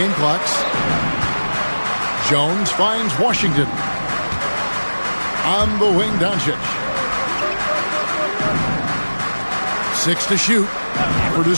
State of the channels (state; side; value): inverted; both; correlation -1.00